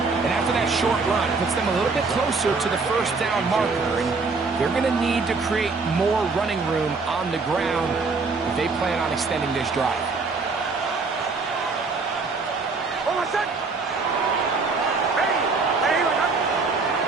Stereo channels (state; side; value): quieter; left; 4.2 dB